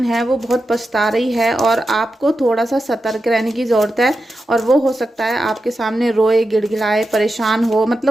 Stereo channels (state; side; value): normal; both; correlation 0.90